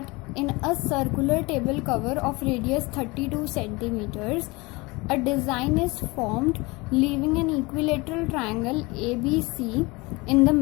in a circular table cover of radius 32 centimeters, a design is formed leaving an equilateral triangle ABC in the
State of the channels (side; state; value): right; quieter; 24.4 dB